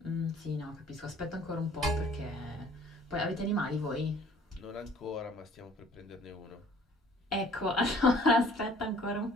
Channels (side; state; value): both; normal; correlation 0.54